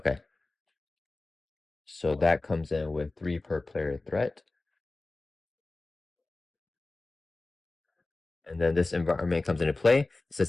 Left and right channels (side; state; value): right; quieter; 3.2 dB